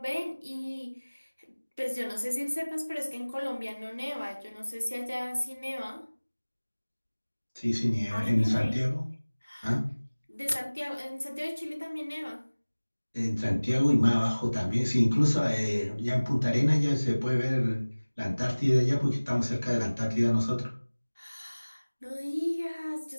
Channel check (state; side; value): inverted; both; correlation -1.00